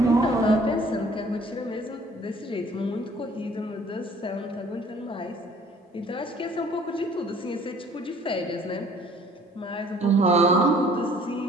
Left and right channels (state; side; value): normal; both; correlation 0.55